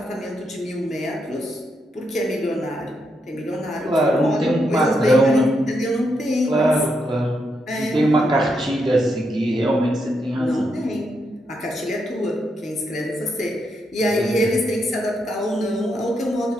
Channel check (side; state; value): both; normal; correlation 0.81